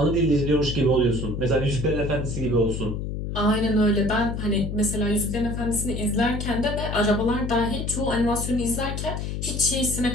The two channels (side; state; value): left; noise; hum, 4 dB below the sound